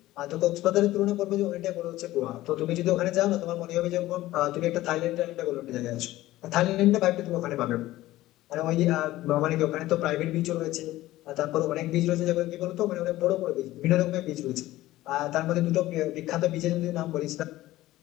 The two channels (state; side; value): quieter; right; 16.3 dB